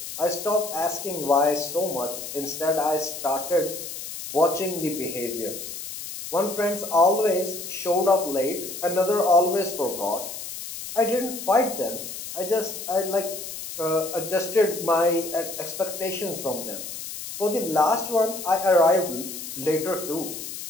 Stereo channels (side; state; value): left; noise; hiss, 9 dB below the sound